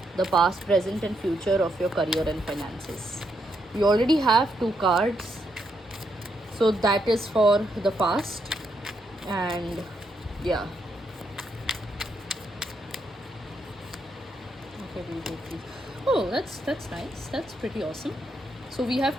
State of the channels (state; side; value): normal; both; correlation 0.78